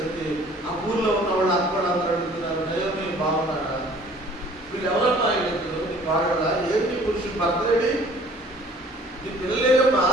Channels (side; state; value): both; normal; correlation 0.53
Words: ఆ ఊర్లో ఉన్న వాళ్ళు అక్కడ అందరూ అడుగుతున్నారు, నయోమి బాగున్నాడా, వీళ్ళు ఎవరన్నా అడుగుతారు, నీ వాడడా, ఏంటి పురుషుడు భర్తలేడి, నీ పిల్లలేదమ్మా,